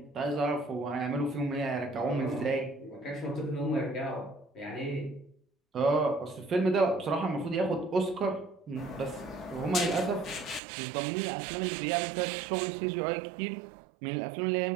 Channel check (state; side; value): drops out; left; at 10.6 s